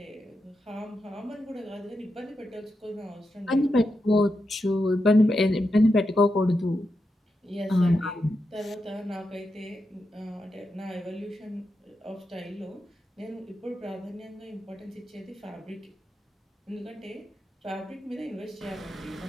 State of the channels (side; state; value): both; normal; correlation 0.87